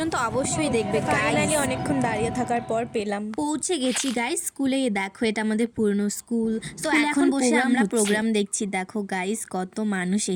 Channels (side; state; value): both; identical; correlation 1.00